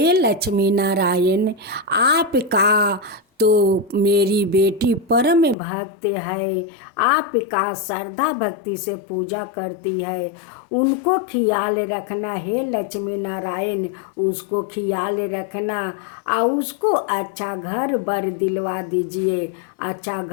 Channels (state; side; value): drops out; right; at 5.6 s